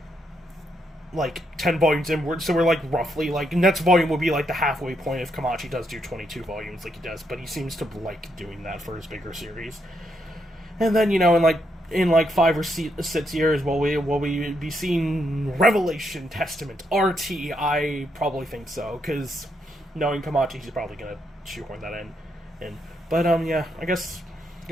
10 volumes inward, so we're like roughly like next volume will be like the halfway point if Kamachi does do 22 volumes like he does, but he seems to like doing that for his bigger series. And then, in 5 or 6 years, will we be seeing Revelation Testament RT? I probably think so, because knowing Kamachi, he's probably gonna shoehorn that in. But yeah, I guess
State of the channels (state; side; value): normal; both; correlation 0.78